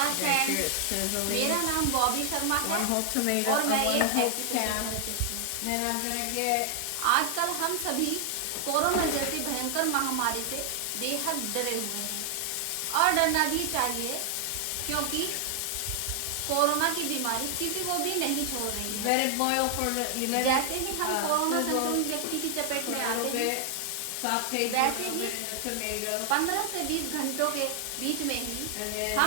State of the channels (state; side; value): different; both; correlation 0.00